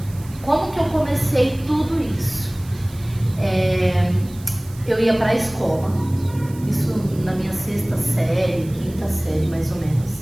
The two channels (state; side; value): noise; right; hiss, 21 dB below the sound